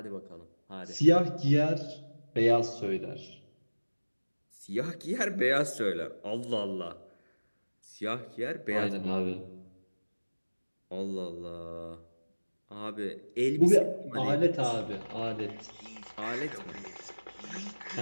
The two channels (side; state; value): both; inverted; correlation -1.00